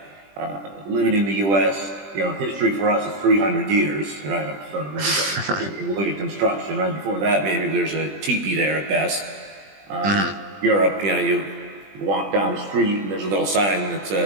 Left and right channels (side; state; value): left; late; 20 ms